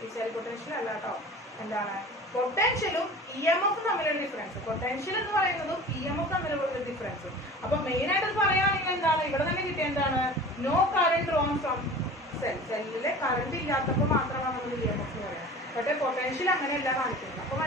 ഈ സെൽ പൊട്ടൻഷ്യൽ അല്ല കേട്ടോ, എന്താണ് പൊട്ടൻഷ്യലും EMF തമ്മിലുള്ള ഡിഫറൻസ്. പൊട്ടൻഷ്യൽ എന്ന് പറയുന്നതും EMF തമ്മിലുള്ള ഡിഫറൻസ്. അപ്പൊ മെയിൻ ആയിട്ട് പറയുകയാണെങ്കിൽ എന്താണ് ഇവിടെ തന്നെ കിട്ടിയ എന്താണ്, no current drawn from cell. സെല്ലിലെ കറണ്ട് ഇല്ലാത്തപ്പോൾ മാത്രമാണ് നമ്മൾ EMF എന്ന് പറയുന്നത്. പക്ഷേ പൊട്ടൻഷ്യൽ അങ്ങനെയല്ല കാണിക്കുന്നത്. അപ്പൊ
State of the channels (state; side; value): normal; both; correlation 0.39